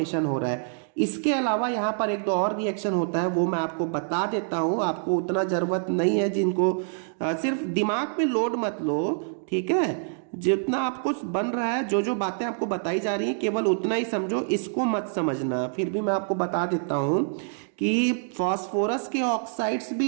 हो रहा है। इसके अलावा यहाँ पर एक दो और रिएक्शन होता है, वो मैं आपको बता देता हूँ, आपको उतना जरूरत नहीं है। जिनको सिर्फ दिमाग पे लोड मत लो, ठीक है। जितना आपको बन रहा है, जो जो बातें आपको बताई जा रही हैं केवल उतना ही समझो, इसको मत समझना। फिर भी मैं आपको बता देता हूँ कि फास्फोरस के ऑक्साइड्स भी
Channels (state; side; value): silent; left; digital silence